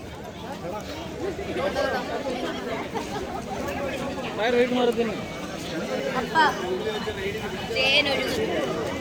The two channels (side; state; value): both; identical; correlation 1.00